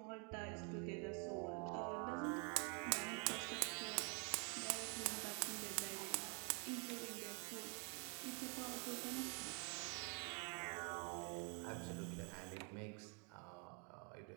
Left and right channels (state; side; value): quieter; left; 36.6 dB